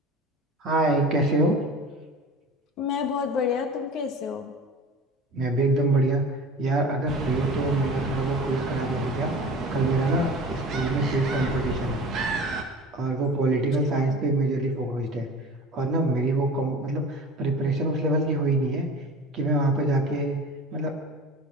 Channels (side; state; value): both; normal; correlation 0.38